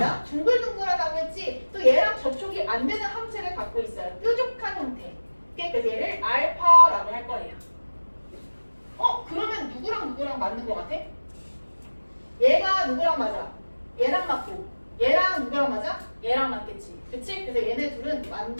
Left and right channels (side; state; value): both; inverted; correlation -1.00